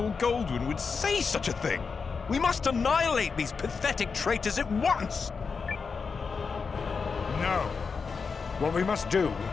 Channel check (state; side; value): quieter; right; 5.2 dB